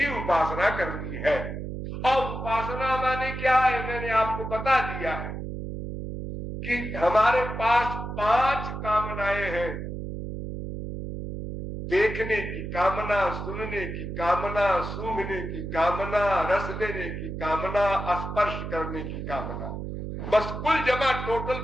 उपासना करनी है। और उपासना माने क्या है, मैंने आपको बता दिया है कि हमारे पास 5 कामनाएं हैं। देखने की कामना, सुनने की कामना, सूंघने की कामना, रस लेने की कामना, स्पर्श करने की कामना, बस कुल जमा टोटल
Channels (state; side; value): noise; right; hum, 6 dB below the sound